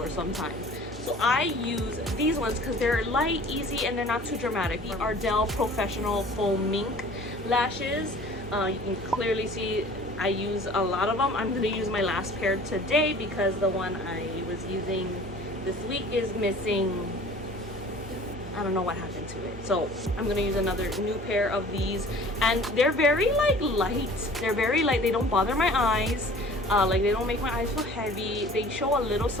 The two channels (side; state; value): both; normal; correlation 0.47